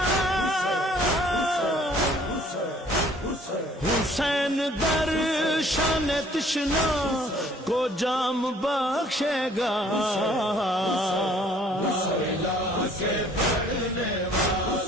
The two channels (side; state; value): both; normal; correlation 0.57